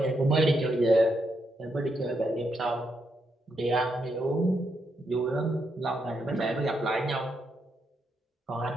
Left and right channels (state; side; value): normal; both; correlation 0.80